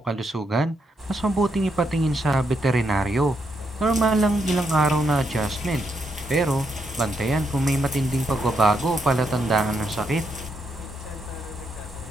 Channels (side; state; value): both; normal; correlation 0.79